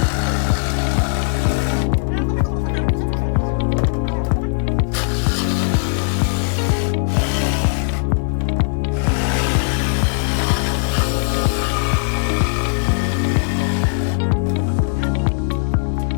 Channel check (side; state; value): right; silent; digital silence